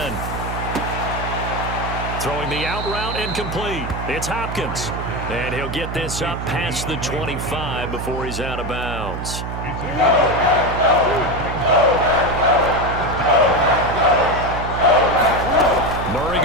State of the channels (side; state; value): right; noise; hum, 6 dB below the sound